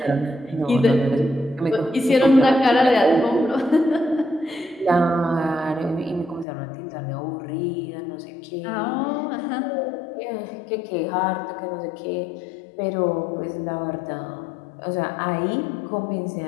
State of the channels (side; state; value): right; drops out; at 6.5 s